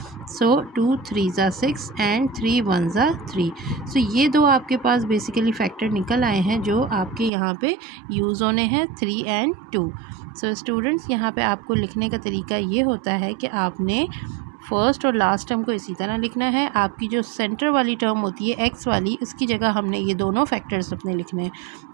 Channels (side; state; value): left; drops out; at 7.3 s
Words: सो 2 3 ज़ा 6 एंड 3 1 ज़ा 3। सो ये दो आपके पास बेसिकली फैक्टर निकल आए हैं जो आपके यहाँ पे यूज़ होने हैं, 3 and 2। सो स्टूडेंट्स यहाँ पे आपको लिखने का तरीका ये होता है कि आपने फर्स्ट और लास्ट टर्म को इसी तरह लिखना है। आपकी जो सेंटर वाली टर्म होती है एक्स वाली, उसकी जगह हमने ये दोनों फैक्टर्स अपने लिखने हैं।